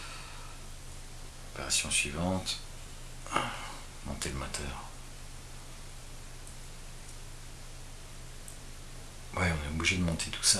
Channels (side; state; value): both; identical; correlation 1.00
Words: Opération suivante, monter le moteur. Ouais, on est obligé de monter tout